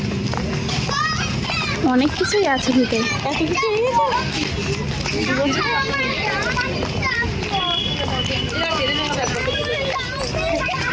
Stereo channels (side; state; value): both; identical; correlation 1.00